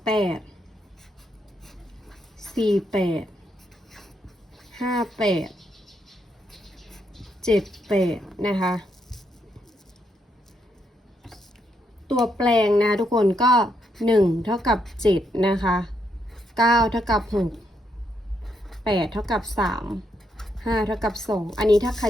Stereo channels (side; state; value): both; normal; correlation 0.78